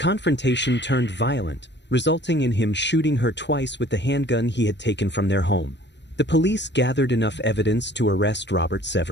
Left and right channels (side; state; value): right; late; 0.51 ms